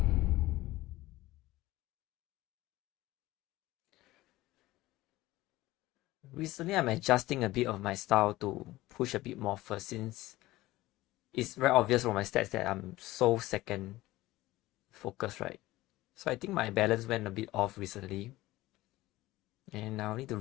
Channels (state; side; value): quieter; right; 17.7 dB